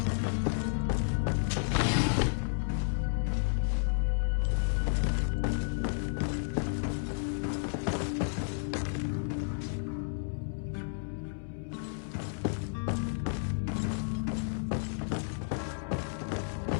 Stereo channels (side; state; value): right; silent; digital silence